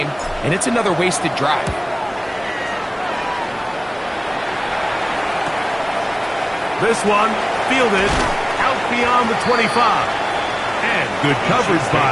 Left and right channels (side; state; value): both; identical; correlation 1.00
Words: and it's another wasted drive. This one fielded out beyond the 25. And good coverage